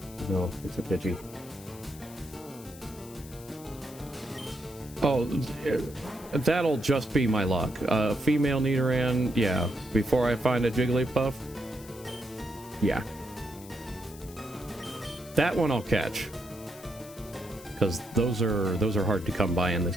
No, it's a Pidgey. Oh, that'll just be my luck. Female Nidoran, yeah. Before I find a Jigglypuff, yeah. That one I'll catch. Because those are hard to come by in this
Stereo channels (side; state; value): left; noise; hiss, 19 dB below the sound